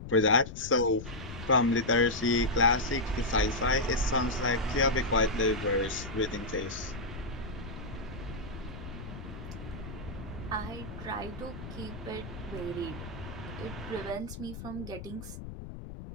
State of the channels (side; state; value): left; noise; rumble, 11 dB below the sound